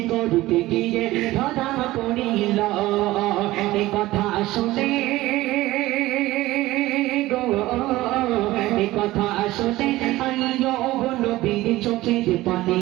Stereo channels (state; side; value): quieter; left; 17.4 dB